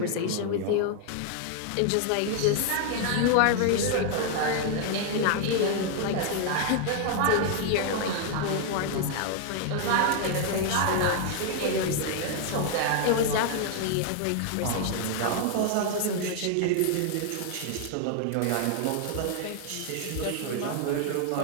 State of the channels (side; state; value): both; different; correlation 0.00